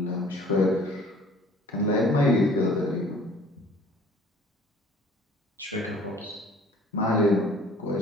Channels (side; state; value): both; normal; correlation 0.51